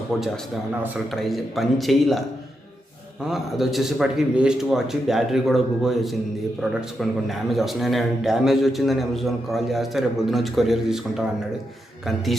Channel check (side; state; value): both; normal; correlation 0.84